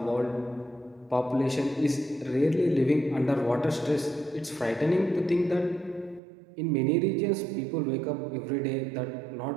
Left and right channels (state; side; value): drops out; left; at 6.2 s